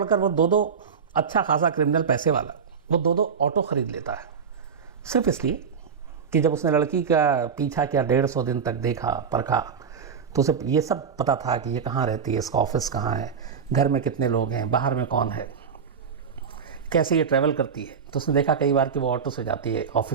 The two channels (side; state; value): left; quieter; 6.5 dB